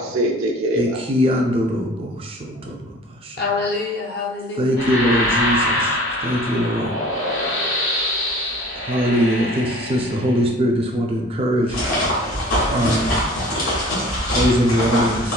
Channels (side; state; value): both; normal; correlation 0.46